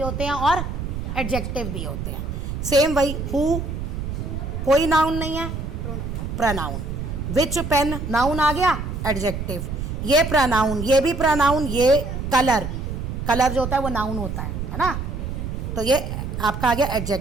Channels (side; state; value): right; noise; rumble, 5 dB below the sound